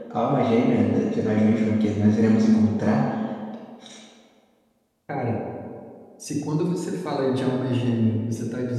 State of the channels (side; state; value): both; identical; correlation 1.00